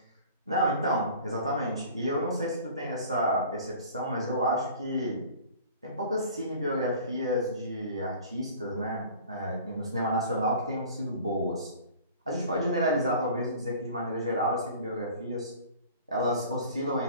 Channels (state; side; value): inverted; both; correlation -0.44